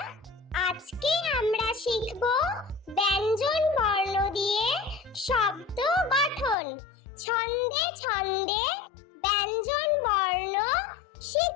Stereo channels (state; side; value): drops out; right; at 6.6 s